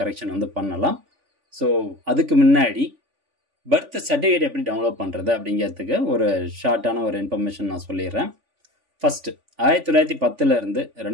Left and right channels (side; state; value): left; late; 3.5 ms